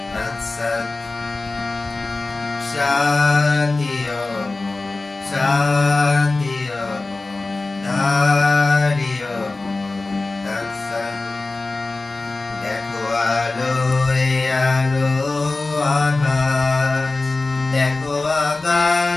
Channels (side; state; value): right; quieter; 3.3 dB